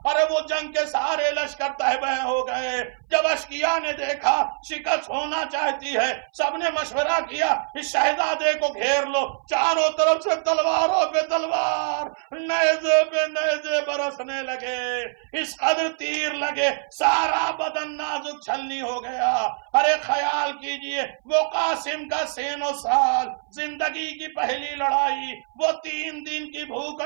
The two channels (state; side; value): silent; left; 59 dB below the other